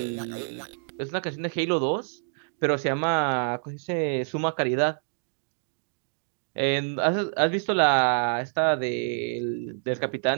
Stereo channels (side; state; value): left; silent; digital silence